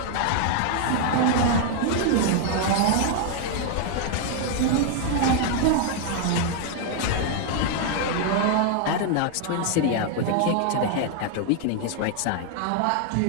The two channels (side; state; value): both; different; correlation 0.00